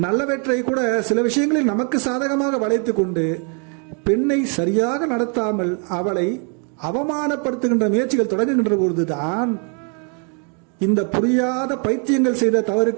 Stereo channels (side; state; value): left; quieter; 39.3 dB